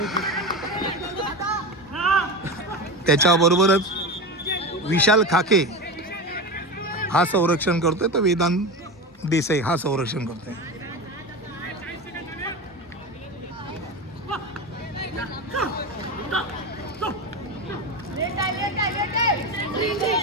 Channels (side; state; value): both; normal; correlation 0.23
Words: त्याच्याबरोबरच विशाल खाके हा संरक्षण करतोय, तर वेदांत देसाई हा संरक्षण करतोय.